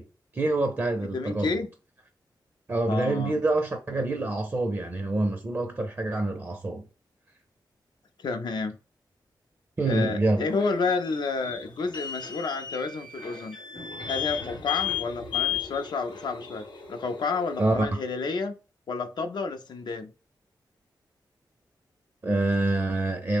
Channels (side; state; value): both; normal; correlation 0.72